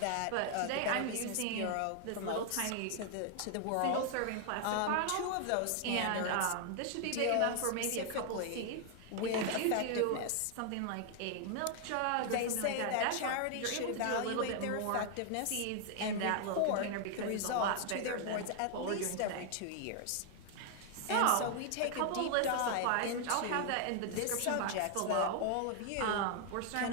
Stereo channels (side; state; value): both; different; correlation 0.00